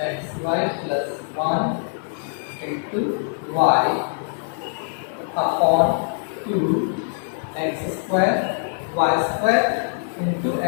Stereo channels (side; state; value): right; silent; digital silence